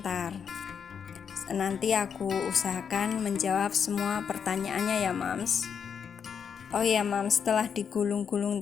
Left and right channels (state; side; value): quieter; right; 7.1 dB